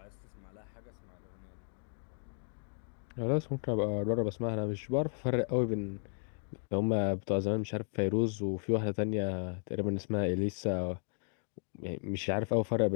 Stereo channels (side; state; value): right; silent; 55 dB below the other